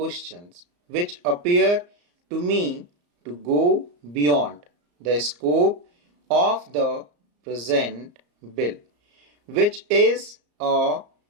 which appear to me to go beyond the scope of the present bill, which is a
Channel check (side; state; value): left; late; 34 ms